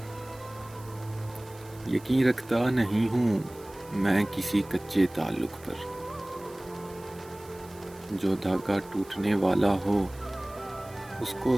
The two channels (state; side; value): noise; right; hiss, 22 dB below the sound